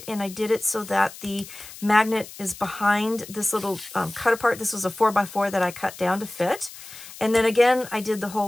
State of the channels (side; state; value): left; noise; hiss, 16 dB below the sound